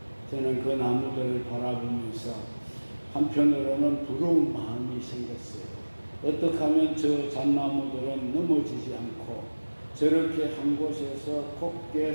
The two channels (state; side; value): inverted; both; correlation -1.00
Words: 저는 그 나무들을 바라보면서 한편으로는 부러운 마음이 생겼어요. 어떻게 하면 저 잣나무들은 넘어지지 않고 저렇게 한 곳에서 곱게